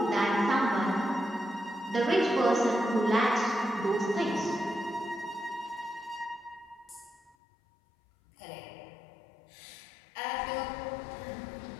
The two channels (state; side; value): drops out; right; at 7.4 s